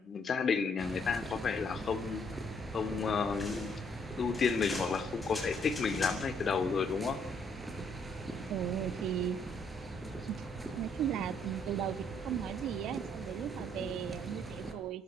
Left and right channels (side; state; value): both; normal; correlation 0.69